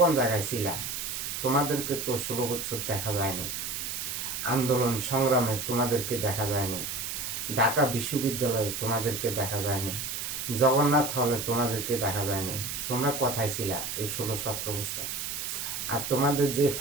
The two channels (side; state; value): right; noise; hiss, 4 dB below the sound